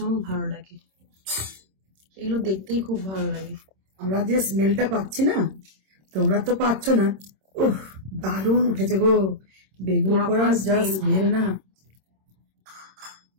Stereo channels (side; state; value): left; late; 26 ms